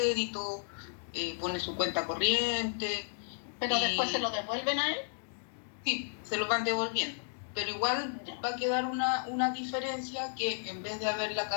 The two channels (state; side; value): silent; right; digital silence